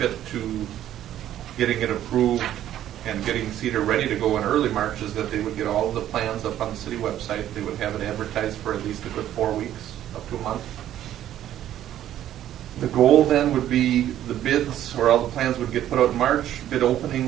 to getting it approved and getting Cedar ready to go in early March is that they would get all of the plans up on the city website. They would have it advertised for at least a good 4 weeks, up to a month. The goal then would be the bids, or all the plans would get put out in March. Bid opening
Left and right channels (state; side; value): quieter; left; 11.9 dB